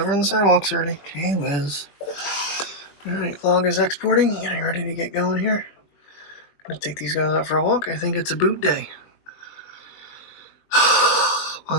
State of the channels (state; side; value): late; right; 21 ms